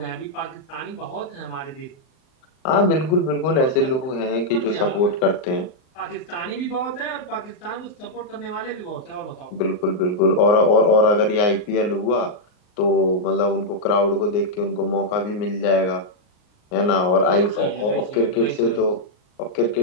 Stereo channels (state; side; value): late; right; 38 ms